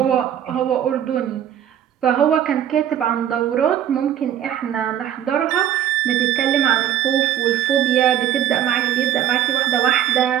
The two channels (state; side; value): quieter; left; 10.6 dB